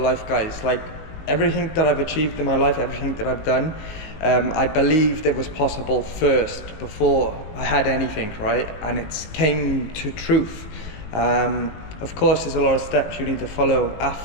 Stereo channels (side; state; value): right; late; 19 ms